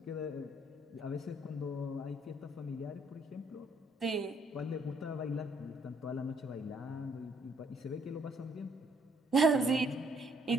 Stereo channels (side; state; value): both; normal; correlation 0.67